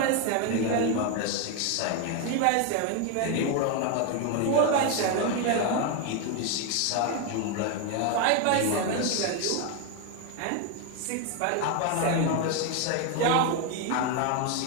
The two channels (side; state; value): both; different; correlation 0.01